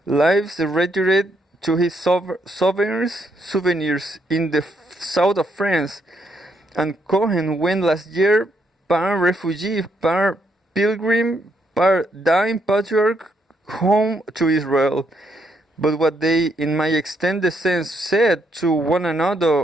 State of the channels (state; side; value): normal; both; correlation 0.75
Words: lives retired to his souvenirs in the south of France, and Cohen went last year par refugee, par pilgrim, par dying patriarch home to Israel. But what they, in my extended sense, said to one